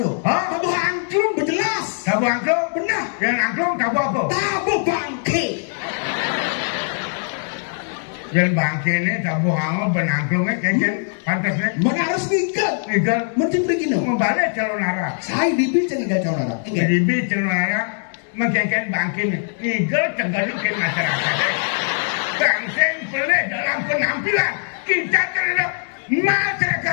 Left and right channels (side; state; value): right; silent; 65 dB below the other